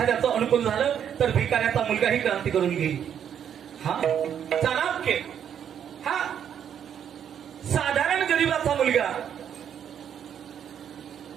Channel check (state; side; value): quieter; left; 8.8 dB